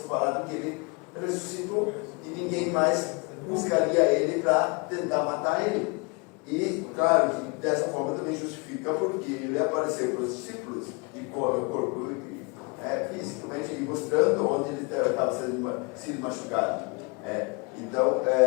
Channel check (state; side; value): quieter; right; 30.5 dB